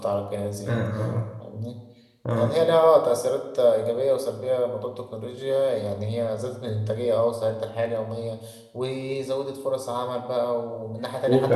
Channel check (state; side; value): identical; both; correlation 1.00